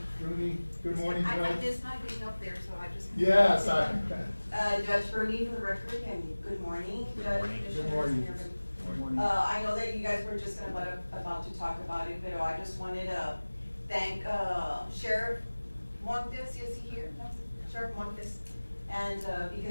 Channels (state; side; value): inverted; both; correlation -1.00